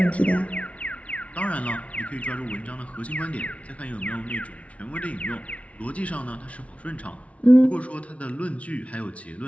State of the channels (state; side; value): late; right; 0.064 ms